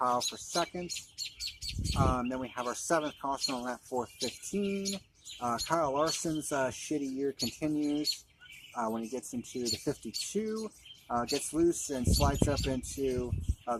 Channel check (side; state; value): both; identical; correlation 1.00